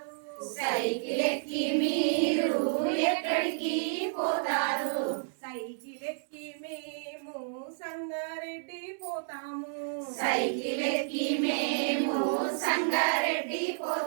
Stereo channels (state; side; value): silent; left; digital silence